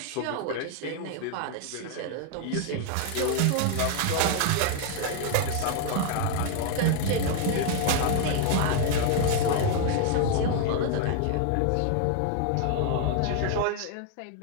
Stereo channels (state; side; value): different; both; correlation 0.00